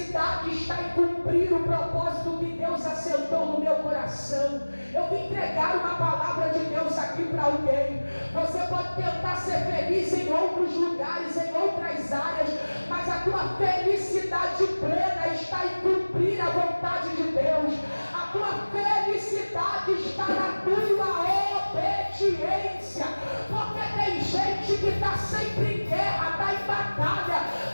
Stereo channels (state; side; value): inverted; both; correlation -1.00